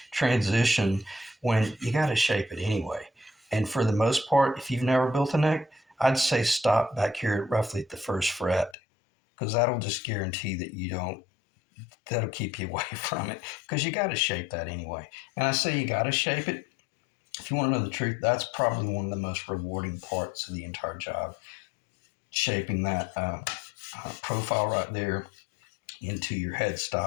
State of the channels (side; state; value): right; drops out; at 8.8 s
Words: transition, when you got to shape it anyway. And for the most part, if you've never built a neck, I'd say stop back here roughly at the 1st fret, because that'll just guarantee that that'll keep you away from it, because you got to shape that anyway. And I say you got to shape it. If you want to know the truth, that's probably one of the most rewarding parts of the entire job, shaping that profile right there into your